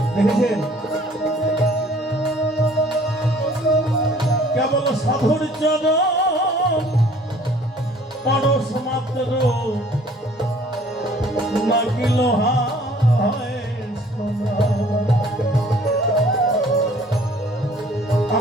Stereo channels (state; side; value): normal; both; correlation 0.55